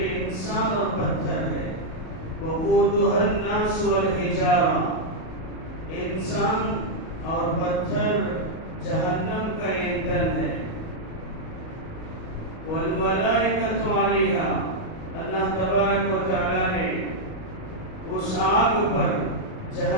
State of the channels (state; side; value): late; right; 37 ms